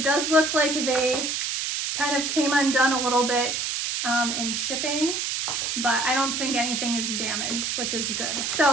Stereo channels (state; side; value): noise; right; hiss, 1 dB below the sound